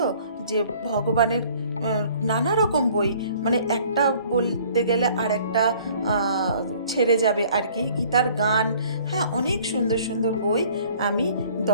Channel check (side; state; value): both; inverted; correlation -0.55